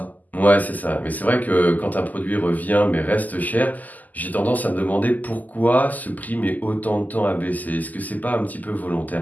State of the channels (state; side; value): late; right; 0.081 ms